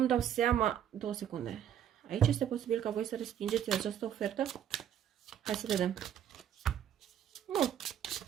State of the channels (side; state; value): left; quieter; 9.8 dB